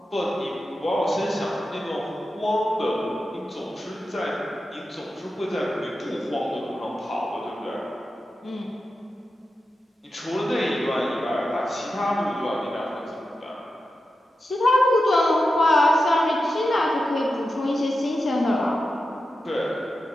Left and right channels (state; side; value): normal; both; correlation 0.90